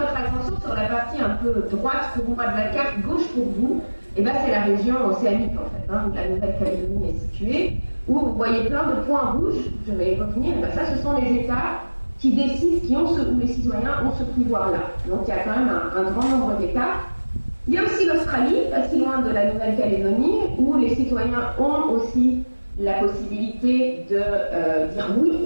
attention sur la partie un peu droite pour moi de la carte, gauche pour vous. Et bien, c'est la région océanique, en fait, où la Nouvelle-Calédonie est située, où vous voyez plein de points rouges, je vais y revenir, et bien ça, ce sont les États qui décident, où les citoyens ont ce pouvoir-là. Donc, il y a quand même un grand nombre d'États. Il y a aussi l'Australie, pas si loin de la Nouvelle-Calédonie, où les citoyens ont aussi la possibilité de dire oui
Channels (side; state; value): both; inverted; correlation -1.00